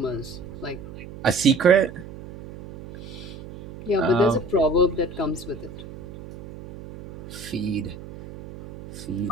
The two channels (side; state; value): right; noise; hum, 14 dB below the sound